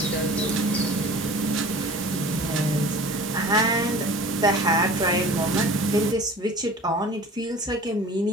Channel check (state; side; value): normal; both; correlation 0.42